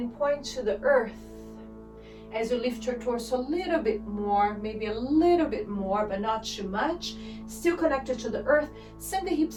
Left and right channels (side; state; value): both; identical; correlation 1.00